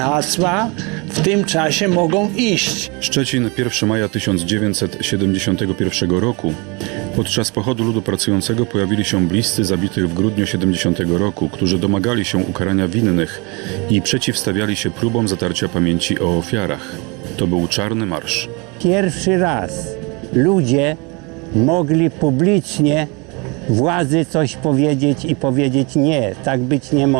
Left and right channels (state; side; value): quieter; left; 29.3 dB